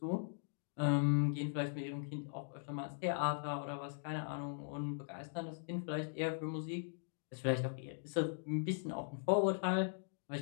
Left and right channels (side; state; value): right; silent; digital silence